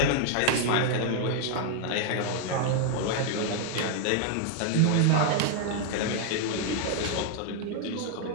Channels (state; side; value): different; both; correlation 0.00